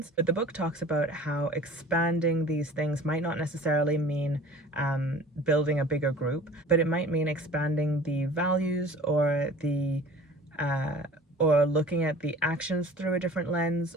But the book talks about how expanding these things might not necessarily mean building a bigger group, but it might mean expanding the values or the or looking at the actions through a different lens,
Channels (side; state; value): both; normal; correlation 0.44